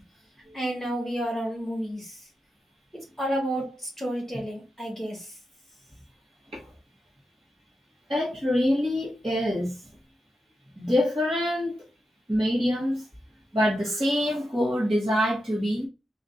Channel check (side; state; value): both; normal; correlation 0.88